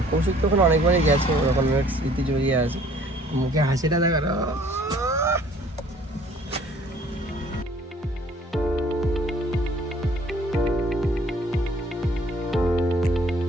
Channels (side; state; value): both; normal; correlation 0.56